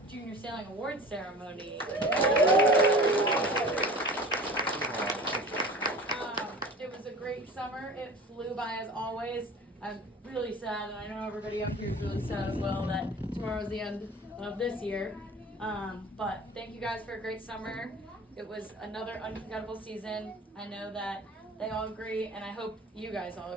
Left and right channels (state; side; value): normal; both; correlation 0.40